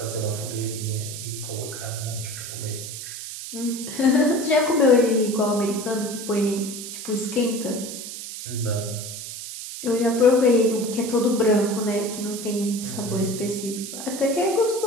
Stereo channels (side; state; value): right; noise; hiss, 9 dB below the sound